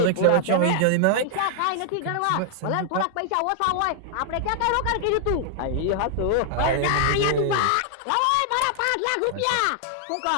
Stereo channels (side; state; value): both; different; correlation 0.00